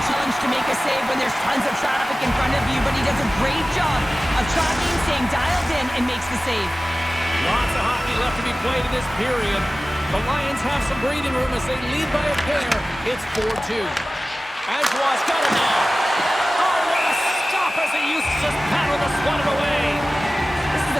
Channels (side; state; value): both; normal; correlation 0.96